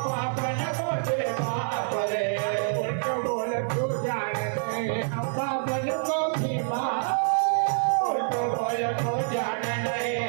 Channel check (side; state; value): left; silent; 60 dB below the other